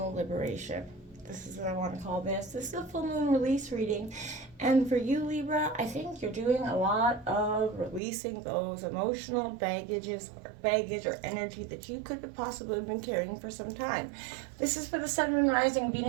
liberation. This is what I want to call this. This is a full moon release reading. And for you, Libra, I think you're doing a lot of releasing those emotional baggage or energy that you could have possibly been carrying for some time. This is for the Sun, Moon, Rising,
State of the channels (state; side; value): drops out; left; at 8.0 s